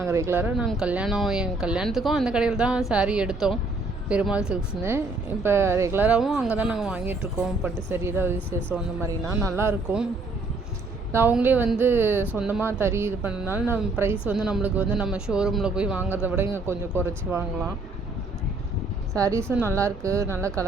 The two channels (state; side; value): quieter; left; 3.2 dB